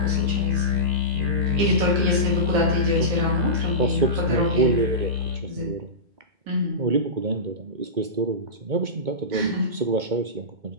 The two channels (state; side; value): late; left; 2.2 ms